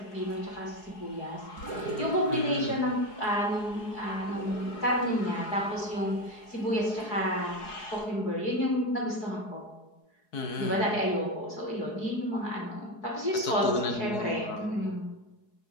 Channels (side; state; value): right; late; 4.7 ms